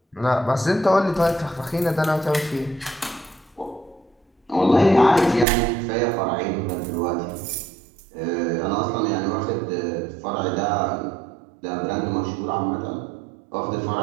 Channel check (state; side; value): drops out; left; at 5.5 s